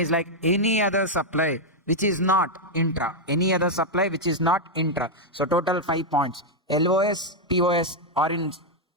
like any other supply which is not intra. Any other supply which is not intra. So total 5 points. LOS, POS are in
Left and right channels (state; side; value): normal; both; correlation -0.01